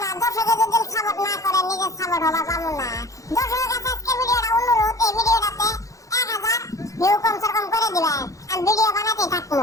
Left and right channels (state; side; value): late; right; 0.16 ms